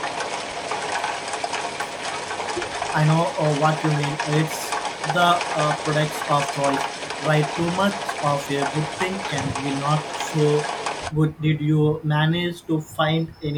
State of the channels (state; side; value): identical; both; correlation 1.00